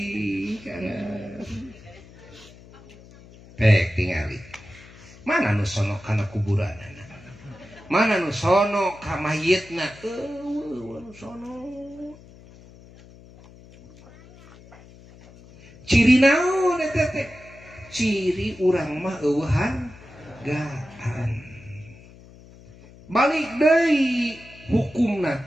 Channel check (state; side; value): noise; left; hum, 21 dB below the sound